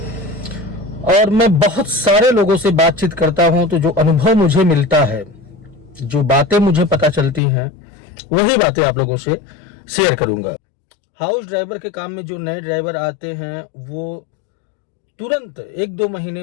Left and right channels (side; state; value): right; drops out; at 7.4 s